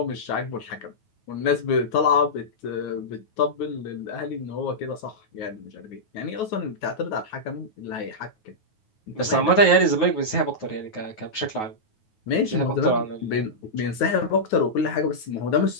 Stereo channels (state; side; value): late; right; 9.3 ms